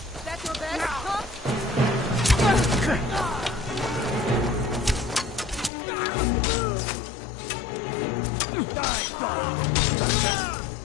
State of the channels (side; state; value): right; drops out; at 5.7 s